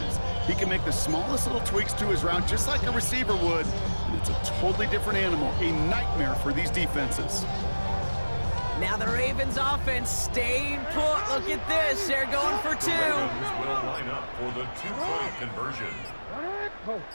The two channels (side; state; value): both; inverted; correlation -1.00